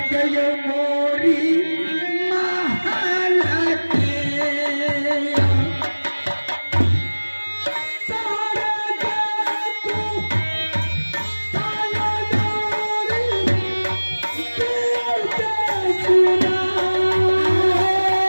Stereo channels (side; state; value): both; inverted; correlation -1.00